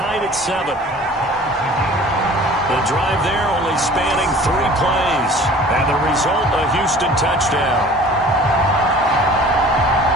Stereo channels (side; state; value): both; normal; correlation 0.46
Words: at 7. The drive there only spanning 3 plays. And the result, a Houston touchdown.